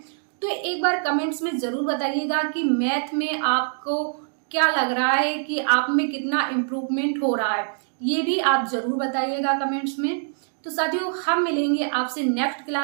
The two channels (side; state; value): left; silent; digital silence